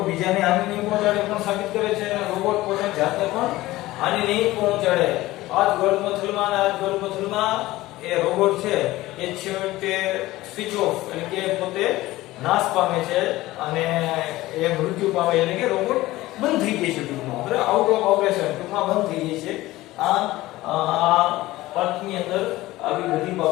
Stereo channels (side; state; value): right; quieter; 17.6 dB